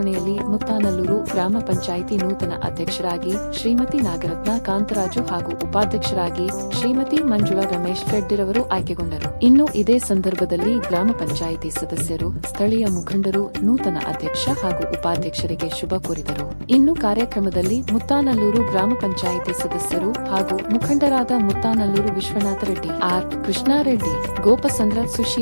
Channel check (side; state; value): both; inverted; correlation -1.00